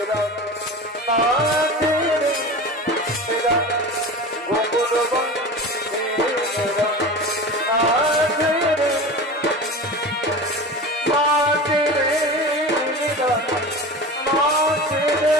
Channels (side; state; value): both; normal; correlation 0.31